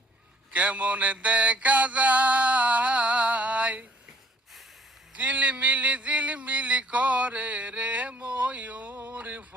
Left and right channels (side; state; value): both; normal; correlation 0.59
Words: কেমন দেখা যায়, ঝিলমিলি ঝিলমিলি করে রে ময়ূর